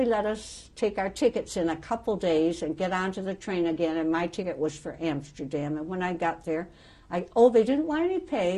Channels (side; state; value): both; identical; correlation 1.00